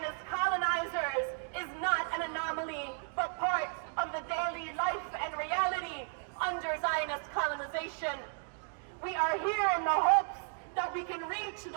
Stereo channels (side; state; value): left; silent; 55 dB below the other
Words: colonizers is not an anomaly, but part of the daily life and reality under Zionist colonization. We are here in the hopes that we can reach the